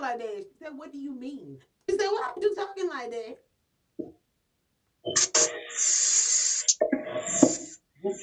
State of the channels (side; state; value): both; identical; correlation 1.00